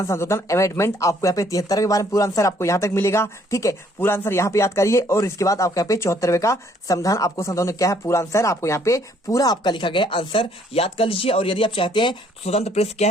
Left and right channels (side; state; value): both; normal; correlation 0.64